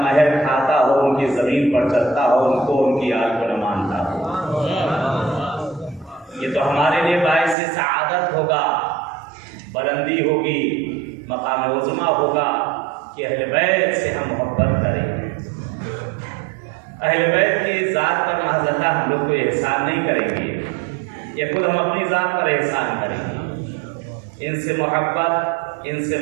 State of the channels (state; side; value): drops out; left; at 7.6 s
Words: महर खाता हो, उनकी जमीन पर चलता हो, उनको उनकी आल को न मानता हो। ये तो हमारे लिए बाइस सआदत होगा, बुलंदी होगी, मकाम उज़्मा होगा कि अहले बैत से हम मोहब्बत करें। अहले बैत की ज़ात पर महज़ल्ला हम लोग को एहसान नहीं करेंगे, ये खुद हम अपनी ज़ात पर एहसान करेंगे। इनसे मोहब्बत, इनसे